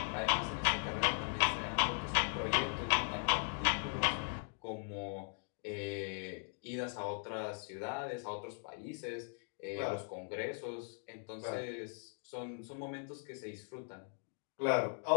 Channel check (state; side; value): silent; right; 52 dB below the other